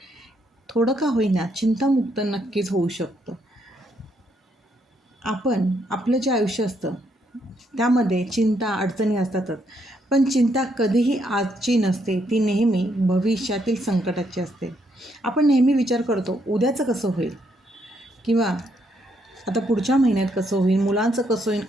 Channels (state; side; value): normal; both; correlation 0.74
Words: थोडं का होईना चिंतामुक्त नक्कीच होऊ शकतो. आपण आपलं जे आयुष्य असतं त्यामध्ये चिंता अडचणी असतातच, पण चिंता कधीही आजची नसते, ती नेहमी भविष्यातील संकटाची असते. आपण नेहमी विचार करतो उद्याचं कसं होईल, किंवा आता पुढच्या महिन्यात कसं होईल, मुलांचं कसं होईल,